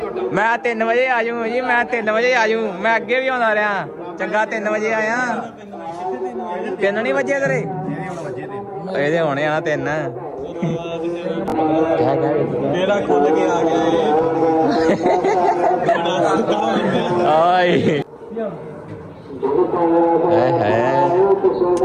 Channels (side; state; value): both; identical; correlation 1.00